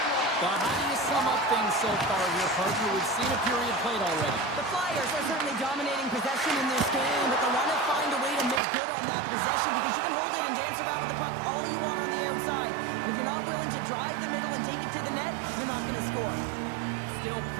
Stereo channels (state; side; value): drops out; left; at 8.6 s